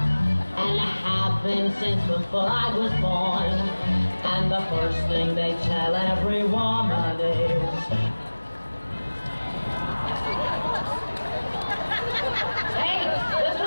and I have been since before I was born. And the first thing they tell every woman is, hey, listen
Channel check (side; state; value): both; inverted; correlation -1.00